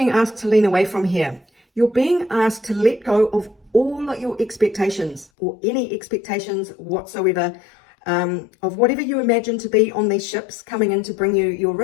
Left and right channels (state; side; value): drops out; right; at 5.2 s